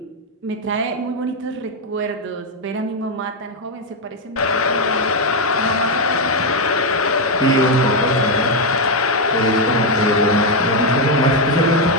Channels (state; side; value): normal; both; correlation 0.03